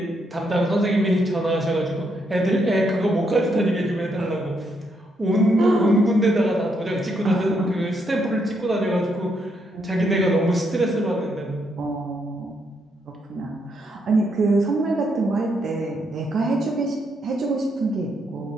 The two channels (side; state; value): both; normal; correlation 0.77